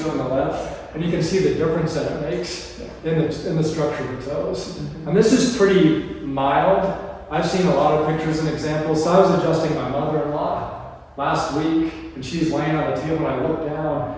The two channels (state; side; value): identical; both; correlation 1.00